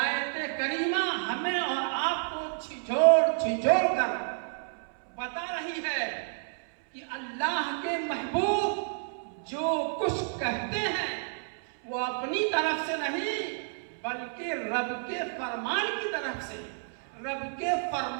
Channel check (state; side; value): silent; left; 58 dB below the other